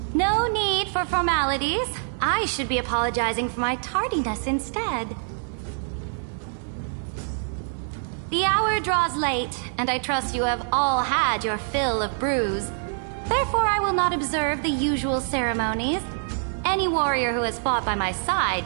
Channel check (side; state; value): left; silent; 62 dB below the other